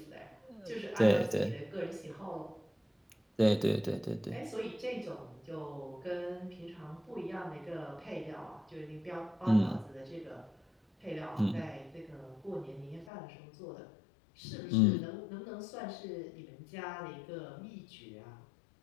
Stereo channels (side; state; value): right; drops out; at 13.1 s